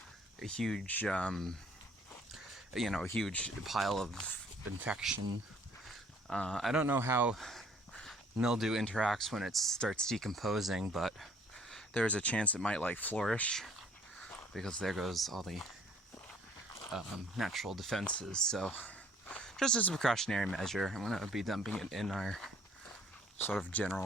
a huge, a huge pile of infection. I don't know how mildew interacts when it starts decomposing, but there's a chance it might like flourish because there goes all the natural defenses. So just as a precautionary measure, I'm going to be dumping it in our sort of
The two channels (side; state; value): both; normal; correlation 0.58